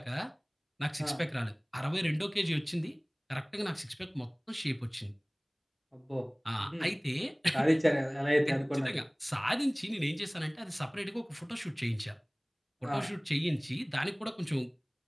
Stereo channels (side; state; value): both; identical; correlation 1.00